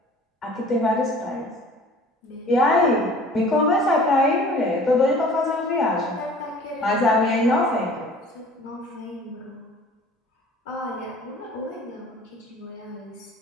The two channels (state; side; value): normal; both; correlation 0.48